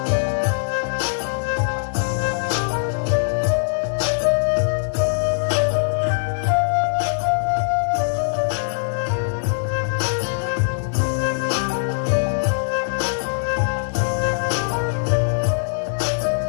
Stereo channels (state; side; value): silent; right; digital silence